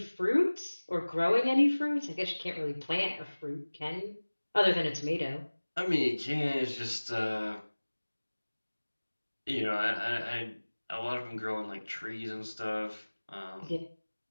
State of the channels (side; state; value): both; inverted; correlation -1.00